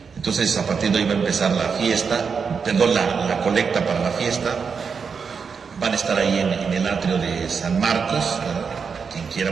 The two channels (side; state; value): left; quieter; 5.8 dB